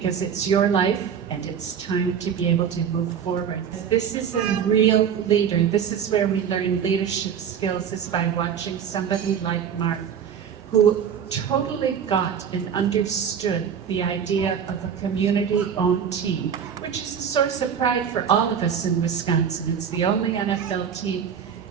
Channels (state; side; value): quieter; left; 7.8 dB